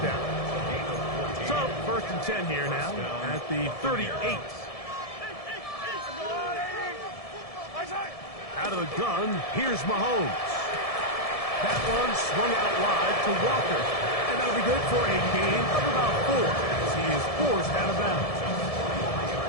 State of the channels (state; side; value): late; right; 1.7 ms